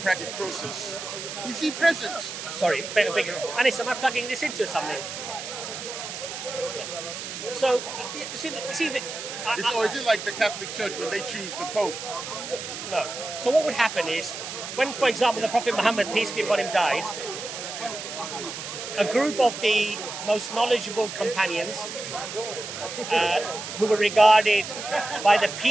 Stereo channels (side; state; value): right; noise; hiss, 8 dB below the sound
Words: process. Is he present? Sorry, Anis, am I plugging this into something? Yeah. So, is it like the Catholic Church when they choose the Pope? No. So what would happen is, when, for example, the Prophet Muhammad, peace be upon him, died, a group of the most knowledgeable companions, who were regarded by the